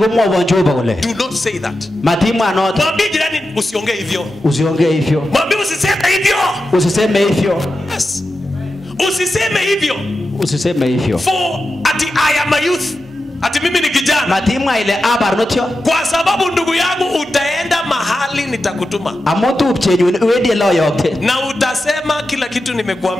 Jehova kule. do not say that. Matima anota. Mwambie jirani usiongee hivyo. Usiongee hivyo. Mwambie usiseme hivyo. Usiseme hivyo. Yes. Usiseme hivyo. Usiseme hivyo. For ati I am a youth. Ati mimi ni kijana. Matima ile abarnotio. Kwa sababu ndugu yangu utaenda mahali nitakutuma. Amotu upchenyu wedi lo yokte. Na utasema kila kitu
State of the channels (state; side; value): normal; both; correlation 0.91